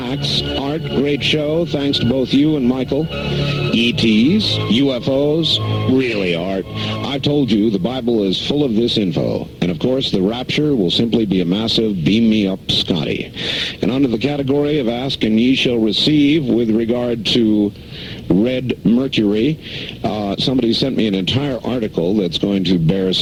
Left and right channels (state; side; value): identical; both; correlation 1.00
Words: Art, great show. Thanks to both you and Michael. ETs, UFOs, really, Art. I've told you the Bible is full of this info. And of course, the rapture will simply be a massive beam me up Scotty. And under the category of ask and ye shall receive with regard to red mercury, somebody sent me an entire article that's going to bear